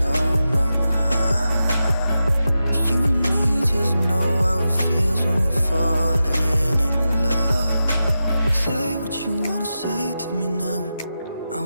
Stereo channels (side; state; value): both; inverted; correlation -0.91